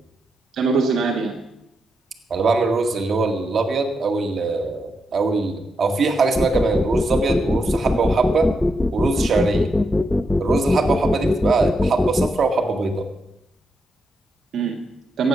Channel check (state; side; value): normal; both; correlation 0.83